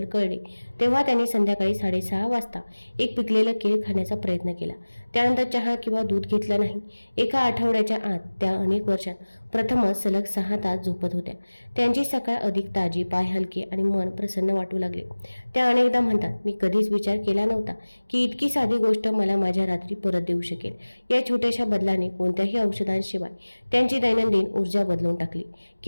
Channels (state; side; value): inverted; both; correlation -1.00